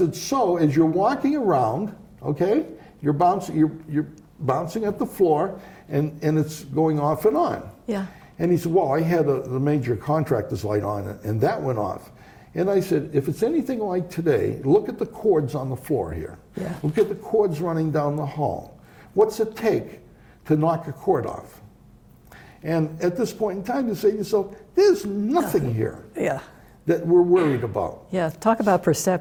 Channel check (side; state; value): both; identical; correlation 1.00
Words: so as you're walking around, okay, you're bouncing at the floor and it's going off and on. Yeah. And he said, well, I had the major contractor's light on and that went off. And I said, if it's anything like today, look at the cords on the floor here. Yeah. Look at the cords running down the hall. What's it take to knock a cord off? And at this point in time, you say to yourself, there's nothing here Yeah. that we're worried about. Yeah. Talk about